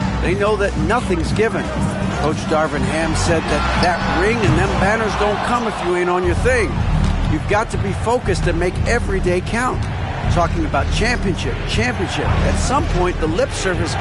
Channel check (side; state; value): both; identical; correlation 1.00